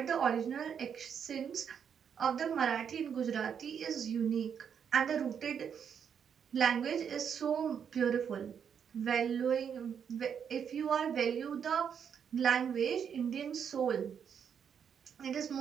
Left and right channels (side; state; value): left; quieter; 7.6 dB